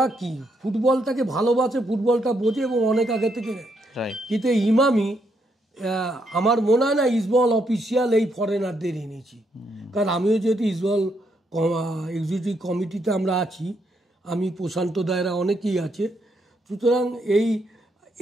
কি ফুটবলটাকে ভালোবাসে, ফুটবলটা বোঝে এবং অনেক আগে থেকে। কিন্তু এই ইমামি আমার মনে হয় না ইস্টবেঙ্গল অফিসিয়াল এই ফরেনারদের এনেছি, কারণ আমিও যেহেতু ইস্টবেঙ্গল এক্সিকিউটিভ কমিটিতে আমরা আছি, আমি প্রশান্ত দায়রা অনেকেই আছে। সুতরাং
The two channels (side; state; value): both; normal; correlation 0.76